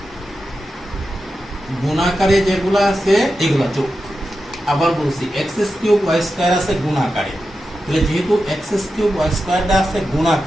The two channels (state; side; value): normal; both; correlation 0.90